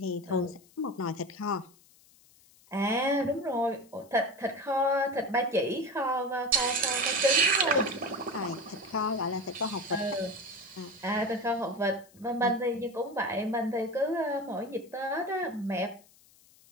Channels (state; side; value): noise; left; hiss, 28 dB below the sound